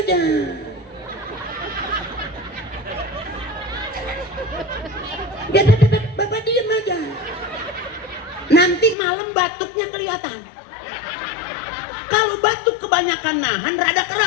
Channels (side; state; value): right; drops out; at 9.0 s